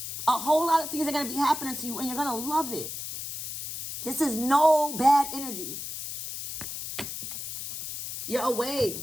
A whole lot of things are going to be happening to you, and you're going to love it. This is no bad energy. You're away.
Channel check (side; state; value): left; noise; hiss, 7 dB below the sound